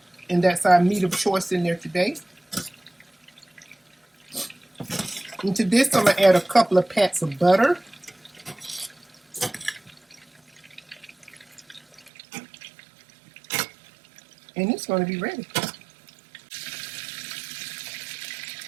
And that's our meat of choice in there today. And to this, I'm going to add a couple of pats of butter. And it's going to be ready.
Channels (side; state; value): left; drops out; at 12.1 s